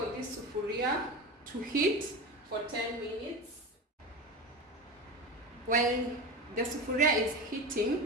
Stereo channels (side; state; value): both; normal; correlation 0.25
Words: this sufuria to heat for 10 minutes. While the sufuria is